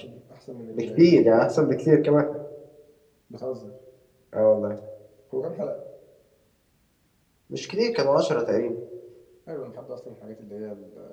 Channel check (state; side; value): identical; both; correlation 1.00